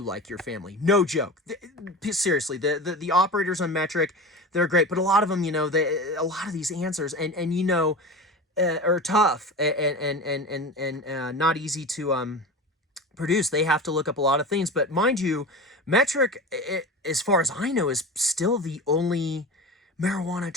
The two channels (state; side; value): normal; both; correlation 0.30